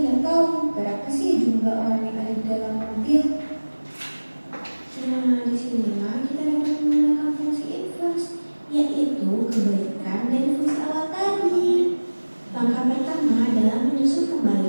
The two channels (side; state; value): both; inverted; correlation -1.00